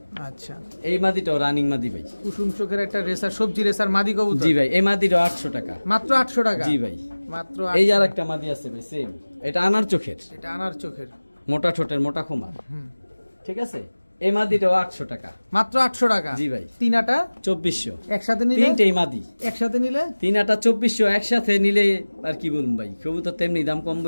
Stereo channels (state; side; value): inverted; both; correlation -1.00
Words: আচ্ছা, এই মাদিটাও রানিং মাদি ভাই, কুসুম চোখের একটা রেসার, সবজি রেসার মাদি কবুতর। জি ভাই, এই মাদিটাও 800 টাকা মাত্র। 800 টাকা। জি ভাই, মাত্র। এই আর একটা মাদি আছে ভাই সেম, এটা আনার চোখের, মোটা ঠোঁটের, মোটা খুমার, ঠিক আছে। এই মাদিটাও 800 টাকা মাত্র। 800 টাকা। জি ভাই, তিনাটা 2400 একসাথে নিলে। তিনটেই মাদি একসাথে নিলে তিনাটা 2400, একসাথে নিলে আর কি বলুন ভাই, কবুতর তেমনি দাম কম